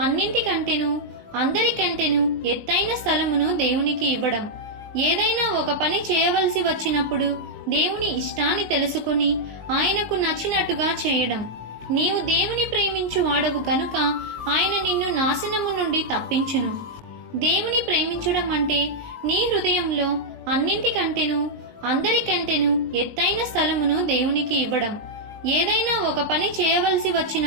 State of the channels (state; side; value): late; left; 19 ms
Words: అన్నింటికంటేను అందరికంటేను ఎత్తైన స్థలమును దేవునికి ఇవ్వడం. ఏదైనా ఒక పని చేయవలసి వచ్చినప్పుడు దేవుని ఇష్టాన్ని తెలుసుకుని ఆయనకు నచ్చినట్టుగా చేయడం. నీవు దేవుని ప్రేమించు వాడవు గనుక ఆయన నిన్ను నాశనము నుండి తప్పించును. దేవుని ప్రేమించడం అంటే నీ హృదయంలో అన్నింటికంటేను అందరికంటేను ఎత్తైన స్థలమును దేవునికి ఇవ్వడం. ఏదైనా ఒక పని చేయవలసి